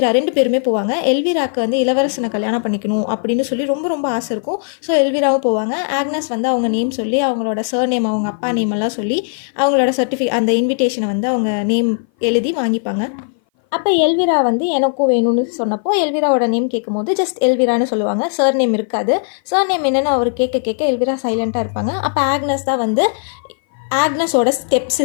2 பேருமே போவாங்க. எல்விராக்கு வந்து இளவரசனை கல்யாணம் பண்ணிக்கணும் அப்படின்னு சொல்லி ரொம்ப ஆசை இருக்கும். ஸோ எல்விராவும் போவாங்க. ஆக்னஸ் வந்து அவங்க நேம் சொல்லி அவங்களோட சர்நேம், அவங்க அப்பா நேம் எல்லாம் சொல்லி அவங்களோட அந்த இன்விடேஷனை வந்து அவங்க நேம் எழுதி வாங்கிப்பாங்க. அப்போ எல்விரா வந்து எனக்கும் வேணும்னு சொன்னப்போ எல்விராவோட நேம் கேட்கும்போது ஜஸ்ட் எல்விரான்னு சொல்லுவாங்க. சர் நேம் இருக்காது. சர் நேம் என்னென்னு அவர் கேட்க எல்விரா சைலண்ட்டாக இருப்பாங்க. அப்போ ஆக்னஸ் தான் வந்து ஆக்னஸோட ஸ்டெப்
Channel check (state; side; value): silent; right; 58 dB below the other